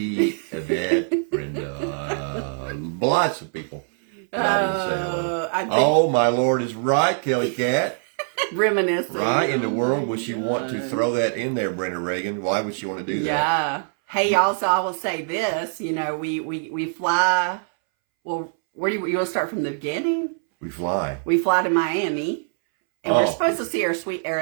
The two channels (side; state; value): left; silent; 63 dB below the other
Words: Yvette. Brenda. Lots of people. I didn't say hello. Oh, my Lord is right, Kelly Cat. Reminiscing. Why in the world would she want to throw that in there, Brenda Reagan? Why would she want to do that? Yeah. Hey, also, I will say this. You know, we fly. Well, where do you want to start from the beginning? We fly. We fly to Miami. And we're supposed to see our sweet